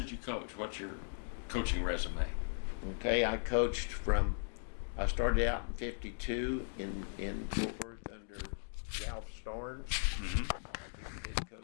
did you coach? What's your coaching resume? Okay, I coached I started out in '52 in Fort Worth under Ralph Storn. Mm-hmm. He was the head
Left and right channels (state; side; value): silent; right; digital silence